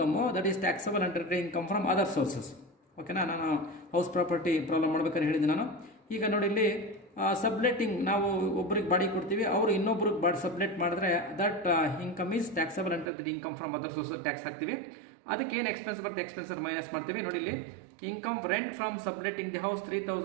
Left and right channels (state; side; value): drops out; left; at 13.1 s